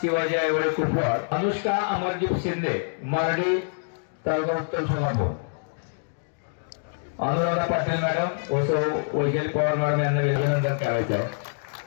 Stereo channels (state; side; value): silent; right; digital silence